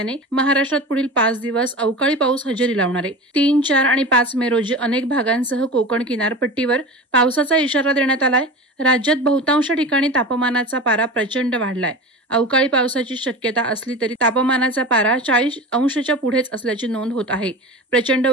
महाराष्ट्रात पुढील 5 दिवस अवकाळी पाऊस हजेरी लावणार आहे. 3, 4 आणि 5 मे रोजी अनेक भागांसह कोकण किनारपट्टीवर पावसाचा इशारा देण्यात आलाय. राज्यात बहुतांश ठिकाणी तापमानाचा पारा प्रचंड वाढलाय. अवकाळी पावसाची शक्यता असली तरी तापमानाचा पारा 40 अंशाच्या पुढेच असल्याची नोंद होत आहे. प्रचंड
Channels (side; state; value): both; normal; correlation 0.31